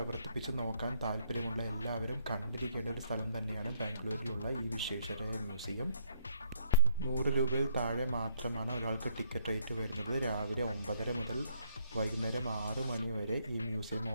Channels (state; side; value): inverted; both; correlation -0.66